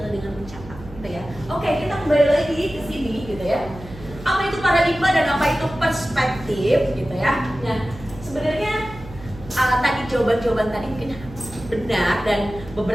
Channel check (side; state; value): right; noise; hum, 16 dB below the sound